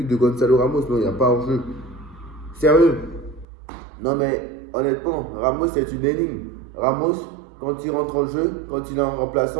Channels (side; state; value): left; drops out; at 3.5 s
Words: de Gonzalo Ramos. Non, il n'y a pas hors-jeu. Sérieux. Non mais, honnêtement, Ramos c'est une énigme. Ramos, quand il rentre en jeu, quand il est en